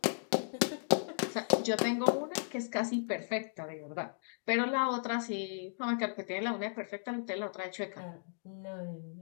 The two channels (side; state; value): right; silent; digital silence